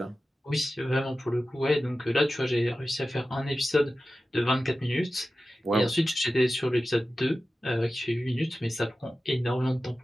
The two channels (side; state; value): both; normal; correlation 0.94